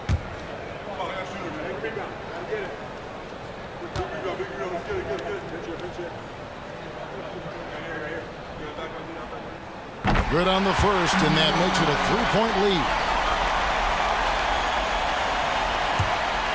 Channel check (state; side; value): identical; both; correlation 1.00